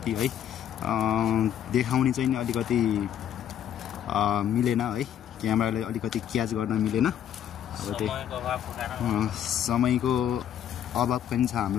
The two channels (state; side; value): quieter; right; 10.1 dB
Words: है देखाउने चाहिँ नि अलिकति मिलेन है। क्यामेराले अलिकति क्याच गर्न मिलेन। अब त्यो समयको अभाव पनि छ